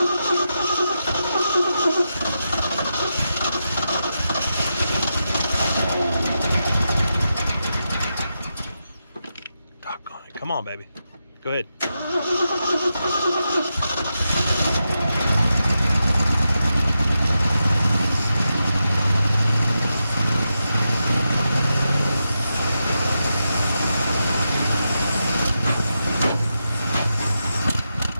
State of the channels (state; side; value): inverted; both; correlation -0.88